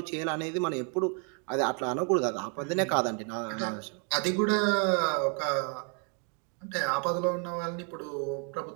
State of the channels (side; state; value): left; quieter; 39.9 dB